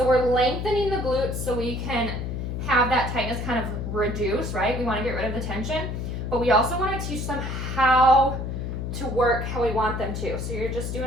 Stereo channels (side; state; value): left; noise; hum, 4 dB below the sound